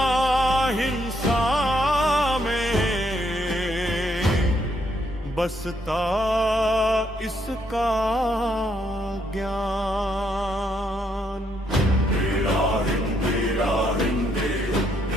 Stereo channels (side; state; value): both; normal; correlation 0.74